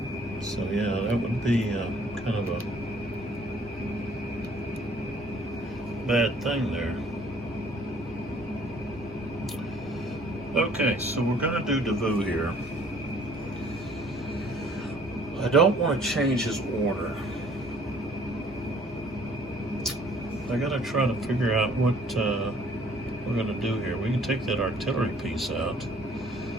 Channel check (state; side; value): normal; both; correlation 0.57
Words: So yeah, that would be kind of a bad thing there. Okay, so we're gonna do Davout here. I don't want to change his order. I gotta try to figure out what we're gonna do here. We can take that artillery piece out.